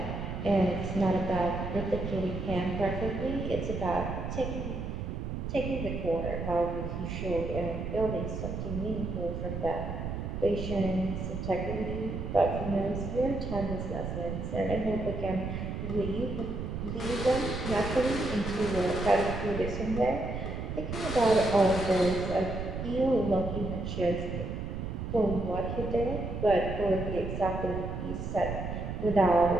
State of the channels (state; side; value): noise; right; rumble, 5 dB below the sound